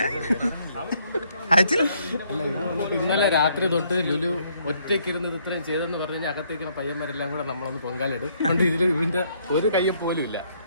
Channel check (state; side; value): inverted; both; correlation -0.69